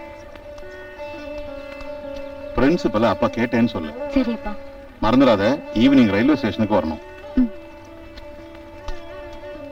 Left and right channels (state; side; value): identical; both; correlation 1.00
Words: பிரின்சிபல் அப்பா கேட்டேன்னு சொல்லு. சரிப்பா. மறந்துடாத, ஈவினிங் ரயில்வே ஸ்டேஷனுக்கு வரணும்.